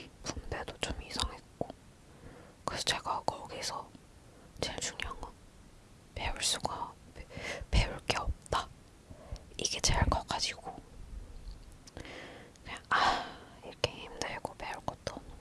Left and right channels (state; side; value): identical; both; correlation 1.00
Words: 분배도 좀 이상했고 그래서 제가 거기서 제일 중요한 건 배울 게 없다. 이게 제일 커가지고 그냥 이렇게 힘들고 배울 것도